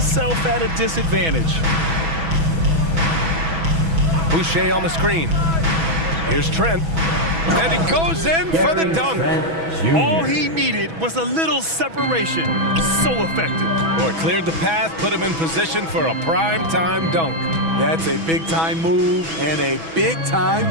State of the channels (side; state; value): left; late; 6.1 ms